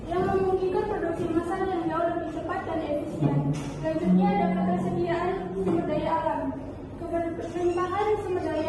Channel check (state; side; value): identical; both; correlation 1.00